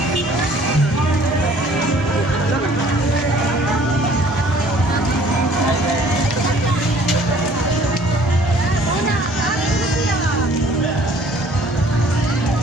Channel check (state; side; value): normal; both; correlation 0.55